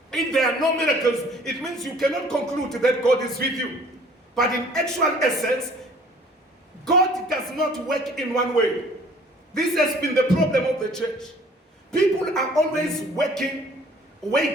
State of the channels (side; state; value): both; normal; correlation 0.53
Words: it means you cannot conclude that God is with you. But in actual essence, God does not work in one way. This has been the problem of the church. People are always waiting